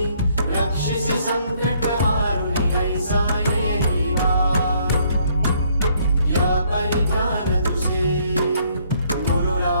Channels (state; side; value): inverted; both; correlation -0.66